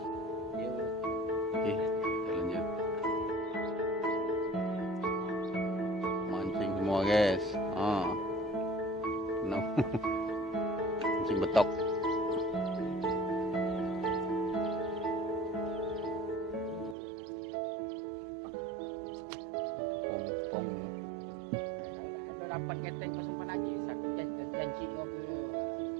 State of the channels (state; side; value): drops out; left; at 16.9 s